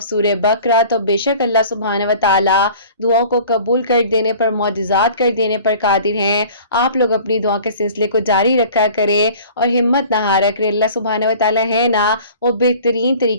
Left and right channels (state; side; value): inverted; both; correlation -0.46